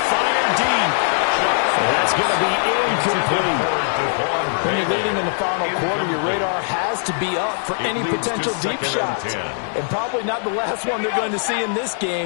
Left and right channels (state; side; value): silent; right; digital silence